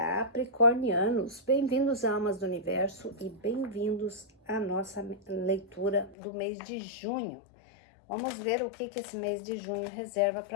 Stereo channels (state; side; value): drops out; right; at 6.2 s